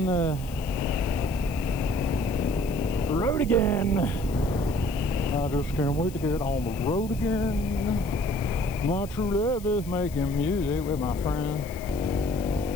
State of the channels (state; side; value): noise; left; hiss, 19 dB below the sound